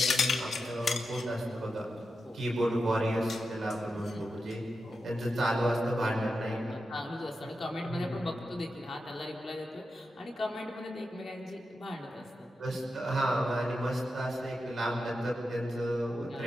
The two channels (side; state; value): both; normal; correlation 0.89